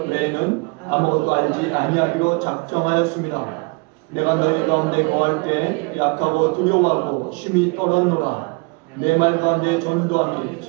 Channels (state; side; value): quieter; left; 29.0 dB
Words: 외에는 아무것도 알지 아니하기로 작정하였습니다. 내가 너희 가운데 거할 때 약하고 두려워하고 심히 떠났노라. 내 말 가운데 전도함이